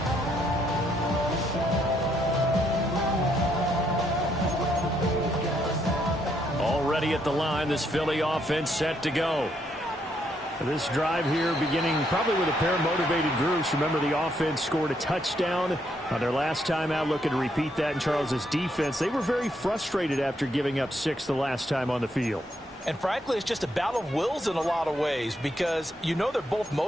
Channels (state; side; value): normal; both; correlation 0.75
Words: Already at the line, this Philly offense set to go. This drive here beginning probably with a pair of motivated groups. Remember, the offense scored a touchdown on their last time out, looking to repeat that in Charles's defense. They were very frustrated after giving up 6 the last time on the field. And frankly, it's just a battle of wills in a lot of ways because you know they're both